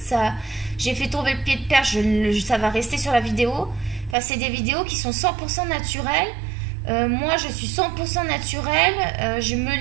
j'ai fait tomber le pied de perche, ça va rester sur la vidéo. Enfin, c'est des vidéos qui sont 100% naturelles. Moi, je suis 100% naturelle. Je me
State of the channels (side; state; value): left; drops out; at 4.2 s